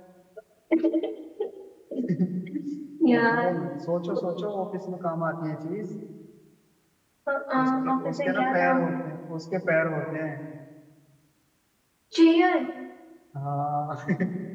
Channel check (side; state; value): both; identical; correlation 1.00